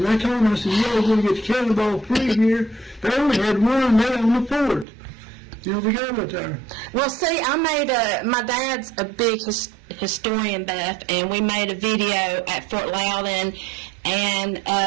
I told them, I said, yeah, we're going to get the cannonball free here. They only had one there on the fort. You know, we got it there. Well, see, my dad's a big historian buff, and we made a video at Fort Loudon, and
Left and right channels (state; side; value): drops out; left; at 4.9 s